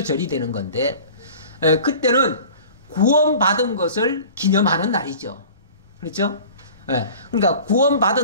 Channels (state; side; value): inverted; both; correlation -0.43